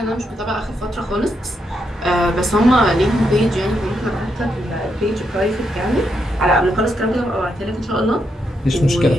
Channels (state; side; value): normal; both; correlation 0.80